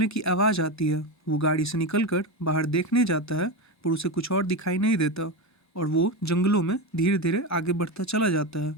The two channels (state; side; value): normal; both; correlation 0.16